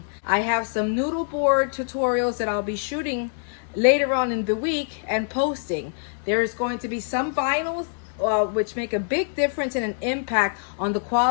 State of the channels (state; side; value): silent; right; 62 dB below the other